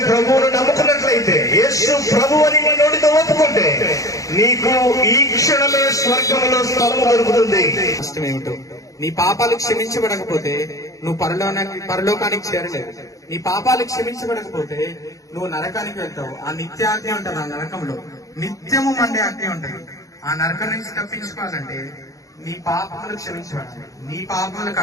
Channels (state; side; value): late; right; 0.16 ms